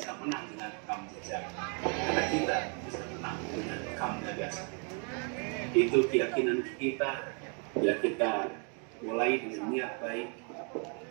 menang dengan rekam jejak, karena kita bisa menang dengan rekam gagasan. Itu keyakinan kita. Ya, kita mulai dengan niat baik,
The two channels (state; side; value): quieter; left; 39.1 dB